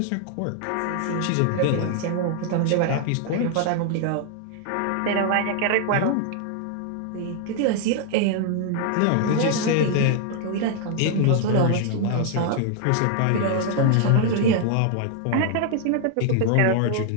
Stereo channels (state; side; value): different; both; correlation 0.00